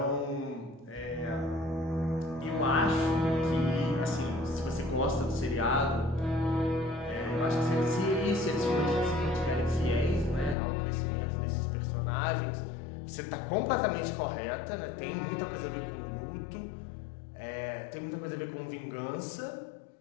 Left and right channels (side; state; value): right; drops out; at 10.6 s